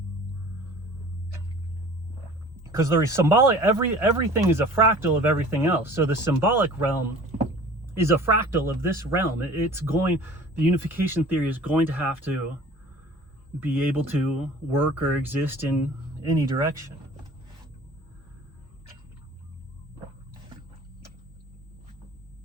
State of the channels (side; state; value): both; normal; correlation 0.45